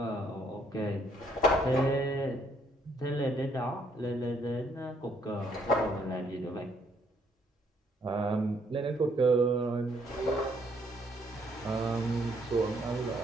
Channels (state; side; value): normal; both; correlation 0.68